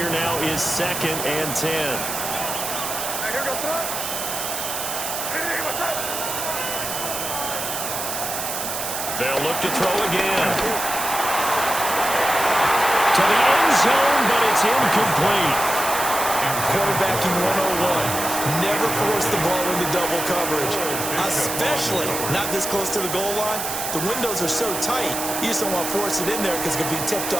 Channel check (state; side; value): noise; right; hiss, 4 dB below the sound